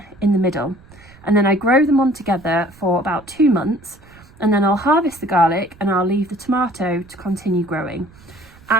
in the middle. And then I grow them on together for about 2 months, and then I'll harvest the garlic and I'll leave the tomato to continue growing.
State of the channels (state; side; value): noise; right; rumble, 24 dB below the sound